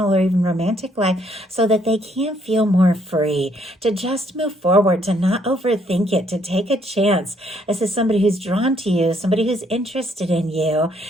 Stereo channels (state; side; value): normal; both; correlation 0.68